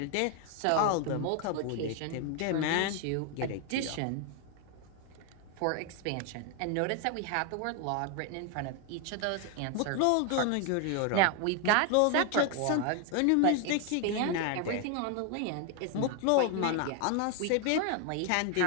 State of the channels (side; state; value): both; different; correlation 0.01